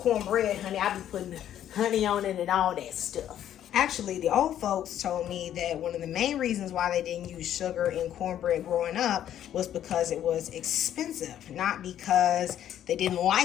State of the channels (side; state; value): right; quieter; 11.0 dB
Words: honey, I be putting honey on it and all that stuff. Actually, the old folks told me that one of the main reasons why they didn't use sugar in cornbread growing up was because it was expensive, not because they didn't